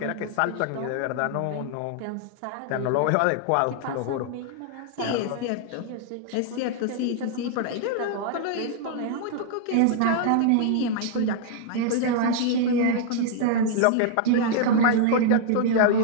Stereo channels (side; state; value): both; different; correlation -0.01